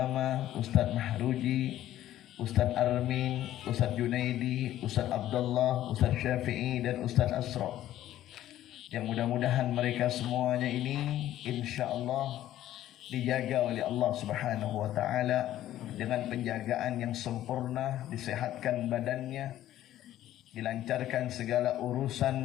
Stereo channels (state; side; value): quieter; right; 13.1 dB